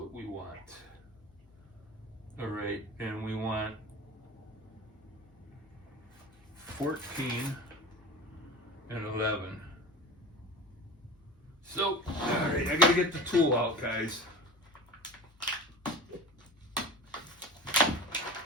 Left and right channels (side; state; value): both; normal; correlation 0.32